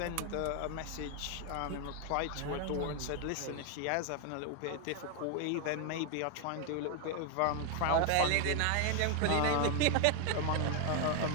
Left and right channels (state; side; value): different; both; correlation 0.00